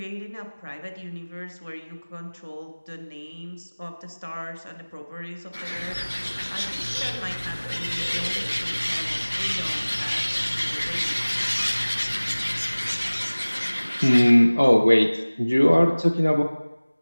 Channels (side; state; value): both; inverted; correlation -1.00